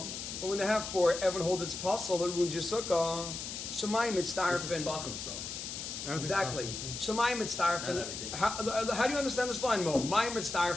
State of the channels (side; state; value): left; noise; hiss, 7 dB below the sound